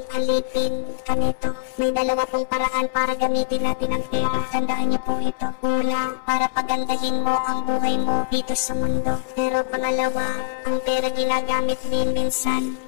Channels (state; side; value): silent; right; 63 dB below the other